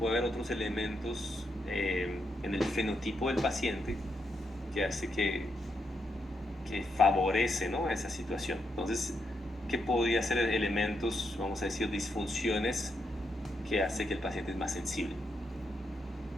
haber otros elementos en el fenotipo del paciente que hace que favorece, ¿no?, esa situación. Entonces, ¿qué podría ser elementos, vamos a decir, disfunciones que hace que el paciente es más sensible?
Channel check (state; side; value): normal; both; correlation 0.81